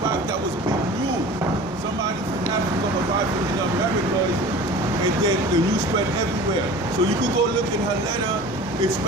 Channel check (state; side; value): normal; both; correlation 0.40